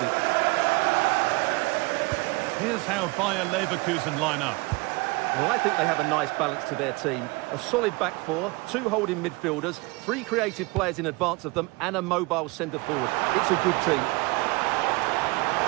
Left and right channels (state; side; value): quieter; left; 25.2 dB